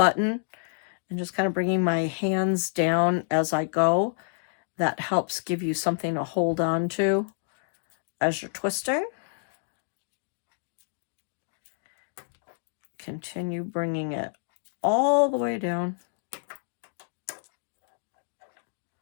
and just kind of bringing my hands down as I go. That helps give you something to hold on to as you're twisting. Continue bringing it all the way down.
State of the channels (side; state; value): right; silent; digital silence